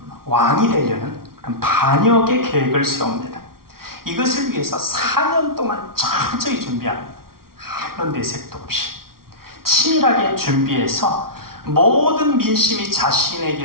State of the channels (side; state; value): left; late; 0.93 ms